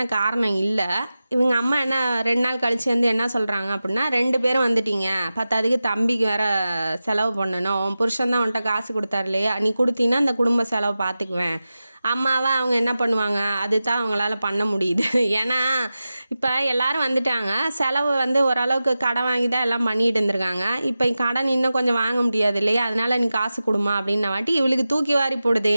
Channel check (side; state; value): both; inverted; correlation -0.94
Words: காரணம் இல்லை. இவங்க அம்மா என்ன 2 நாள் கழிச்சு வந்து என்ன சொல்கிறாங்க அப்படின்னா, 2 பேரும் வந்துட்டீங்க, பத்தாதுக்கு தம்பிக்கு வேறு செலவு பண்ணணும், உன் புருஷன் தான் உன்கிட்ட காசு கொடுத்தாரு இல்லையா, நீ கொடுத்தீங்கன்னா அந்த குடும்ப செலவு பார்த்துக்குவேன் அம்மாவை அவங்க என்ன பண்ணுவாங்க, அதுதான் அவங்களால பண்ண முடியுது. ஏன்னா இப்போ எல்லாரும் வந்துட்டாங்க, செலவு வந்து ஓரளவுக்கு கடன் வாங்கி தான் எல்லாம் பண்ணிட்டு இருந்திருக்காங்க. இப்போ கடன் இன்னும் கொஞ்சம் வாங்க முடியாது இல்லையா, அதனால நீ காசு கொடுமா அப்படின்ன வாட்டி இவளுக்கு தூக்கி வாரி போடுது.